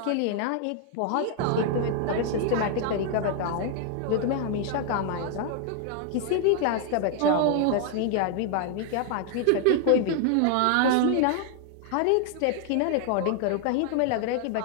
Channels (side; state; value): both; different; correlation 0.00